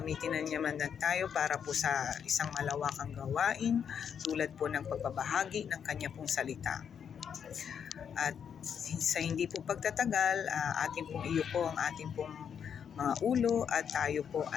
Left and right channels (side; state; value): right; quieter; 7.7 dB